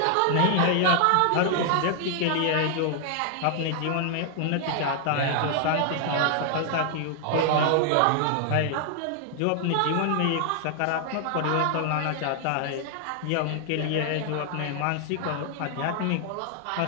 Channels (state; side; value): different; both; correlation 0.00